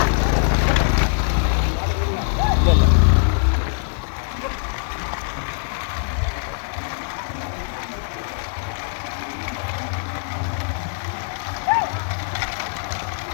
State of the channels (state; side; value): silent; right; 64 dB below the other